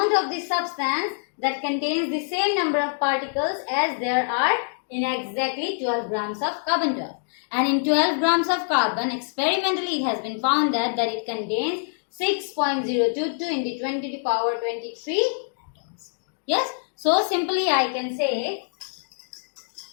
of the substance that contains the same number of particles as there are in exactly 12 grams of carbon-12. And in 12 grams of carbon, experimentally it has been found that it contains 6.022 into 20 to the power 23 atoms. Yes. So simply I can say,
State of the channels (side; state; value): right; silent; digital silence